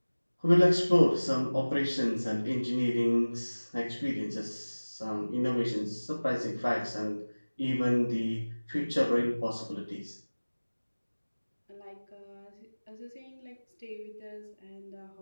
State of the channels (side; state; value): both; inverted; correlation -1.00